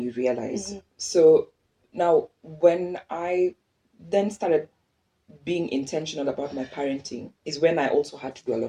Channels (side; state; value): both; identical; correlation 1.00